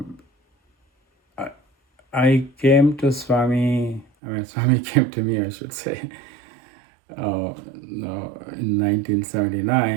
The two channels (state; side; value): drops out; left; at 4.0 s